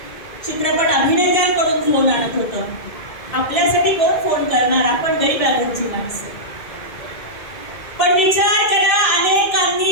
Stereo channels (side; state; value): right; late; 2.1 ms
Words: चित्रपट अभिनेत्यांकडून फोन आणत होतं. आपल्यासाठी कोण फोन करणार? आपण गरीब घरची माणसं. पण विचार करा,